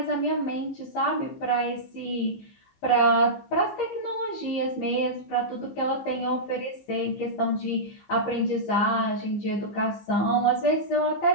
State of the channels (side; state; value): right; late; 15 ms